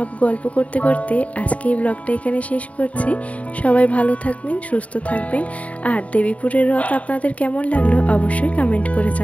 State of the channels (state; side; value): late; right; 0.067 ms